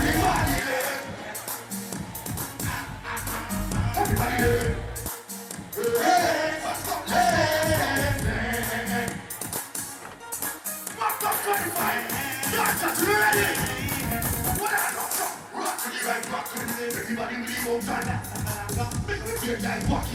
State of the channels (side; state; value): both; identical; correlation 1.00